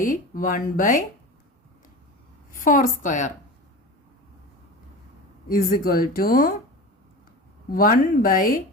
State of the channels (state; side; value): normal; both; correlation 0.31